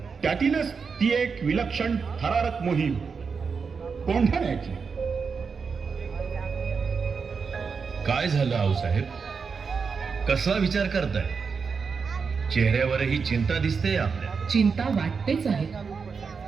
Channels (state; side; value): quieter; left; 5.5 dB